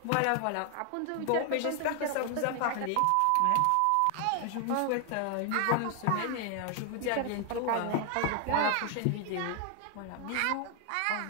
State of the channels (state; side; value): different; both; correlation 0.00